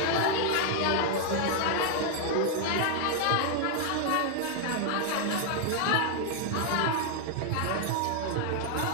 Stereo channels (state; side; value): different; both; correlation 0.00